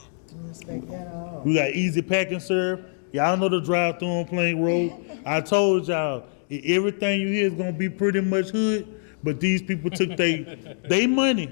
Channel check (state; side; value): silent; right; digital silence